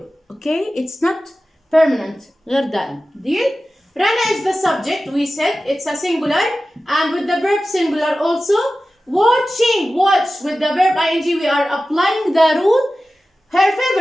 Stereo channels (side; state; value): both; normal; correlation 0.95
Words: okay? It's not permanent. غير دائم. Deal? Rana is the subject, we said, it's a singular, and with the verb singular also. Watching, watch, with the verb ing, we are applying the rule. Her